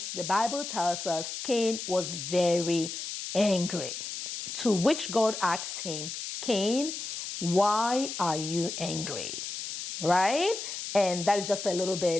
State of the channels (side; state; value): left; noise; hiss, 6 dB below the sound